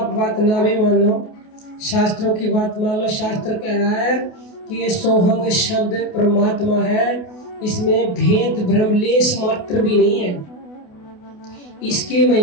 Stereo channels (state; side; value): late; right; 28 ms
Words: बात ना भी मानो, शास्त्रों की बात मान लो। शास्त्र कह रहा है कि ये सोहंग शब्द परमात्मा है, इसमें भेद भ्रम लेस मात्र भी नहीं है। इसके